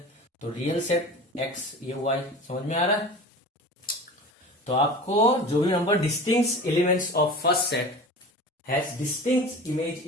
तो रियल सेट x, ये y। समझ में आ रहा है? तो आपको जो भी number distinct elements of first set has distinct image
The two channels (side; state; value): both; normal; correlation 0.36